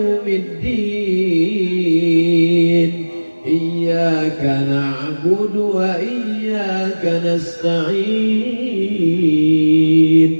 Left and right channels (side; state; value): both; inverted; correlation -1.00